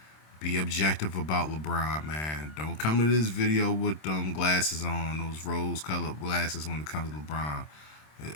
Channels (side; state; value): right; late; 26 ms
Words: Be objective about LeBron, man. Don't come to this video with them glasses on, those rose-colored glasses when it comes to LeBron.